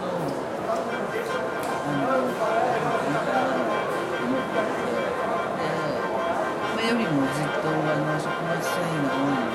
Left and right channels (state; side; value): identical; both; correlation 1.00